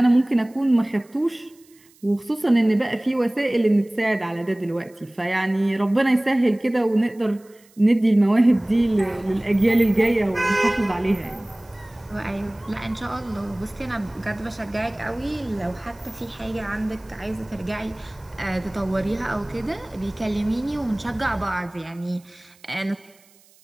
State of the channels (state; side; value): noise; right; hiss, 29 dB below the sound